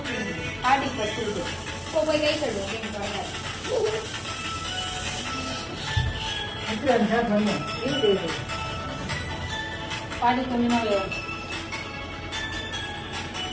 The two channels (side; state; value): both; identical; correlation 1.00